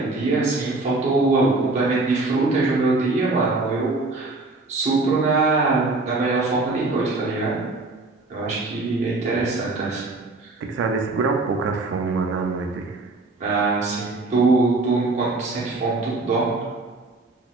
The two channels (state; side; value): quieter; left; 3.3 dB